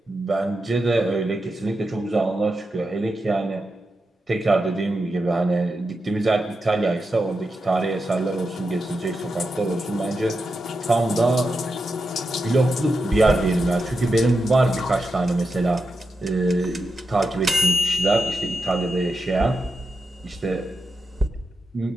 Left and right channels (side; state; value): both; normal; correlation 0.88